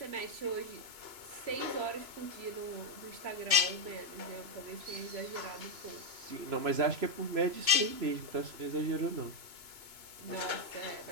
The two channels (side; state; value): left; late; 2.8 ms